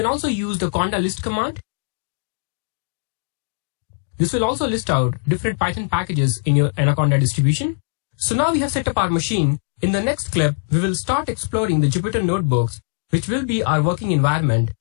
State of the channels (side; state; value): right; silent; digital silence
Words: also use the conda list command. This will also list out different Python packages in your Anaconda distribution. So now we have set up our machine. In the next clip, we will start exploring the Jupyter notebooks, which will be our working environment